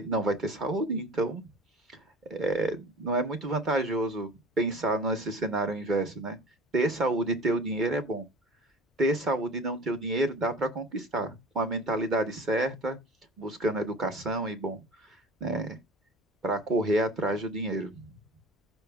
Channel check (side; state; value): both; normal; correlation 0.40